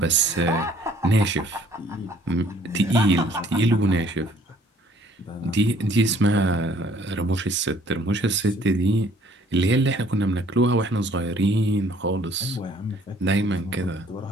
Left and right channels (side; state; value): both; normal; correlation 0.59